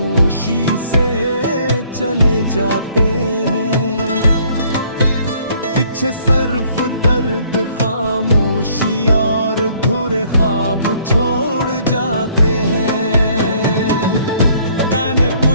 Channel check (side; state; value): both; inverted; correlation -0.62